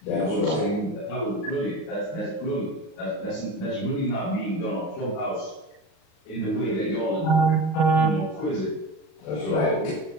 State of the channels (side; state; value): right; late; 38 ms